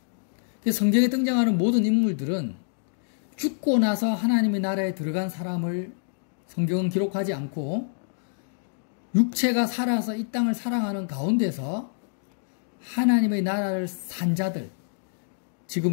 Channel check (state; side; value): silent; right; digital silence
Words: 성경에 등장하는 모든 인물들은 죽고 나서 하나님의 나라에 들어간 사람을 성경은 기록하지 않고 육체가 살아서 이 땅을 살아가는 가운데서 하나님의 나라를 산 자들,